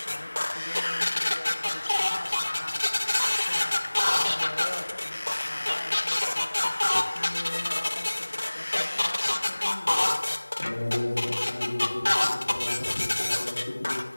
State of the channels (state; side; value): inverted; both; correlation -1.00